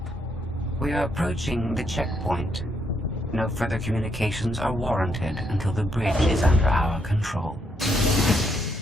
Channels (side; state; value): both; normal; correlation 0.76